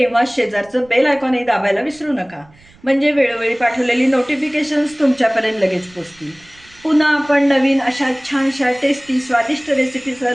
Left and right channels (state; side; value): noise; right; rumble, 28 dB below the sound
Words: शेजारचं बेल आयकॉनही दाबायला विसरू नका, म्हणजे वेळोवेळी पाठवलेली नोटिफिकेशन्स तुमच्यापर्यंत लगेच पोचतील. पुन्हा आपण नवीन अशा छानशा टेस्टी स्वादिष्ट रेसिपीसह